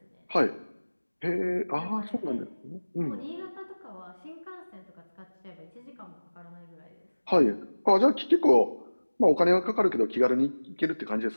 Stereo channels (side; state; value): both; inverted; correlation -1.00